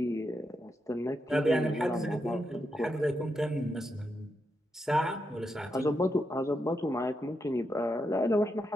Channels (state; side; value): normal; both; correlation 0.84